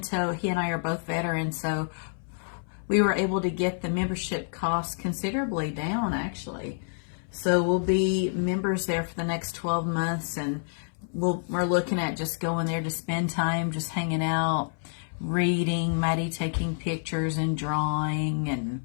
he and I are both veterans, so we were able to get the membership costs considerably down, actually. So we'll be members there for the next 12 months, and we're looking at just going there to spend time, just hanging out, reading, Maddie taking pictures and drawing,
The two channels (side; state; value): right; silent; 59 dB below the other